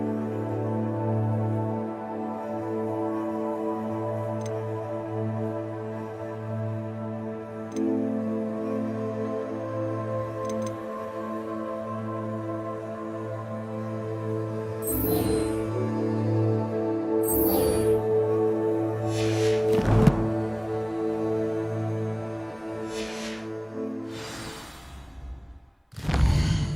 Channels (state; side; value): identical; both; correlation 1.00